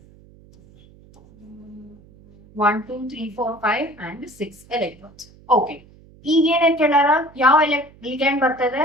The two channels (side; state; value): right; noise; hum, 25 dB below the sound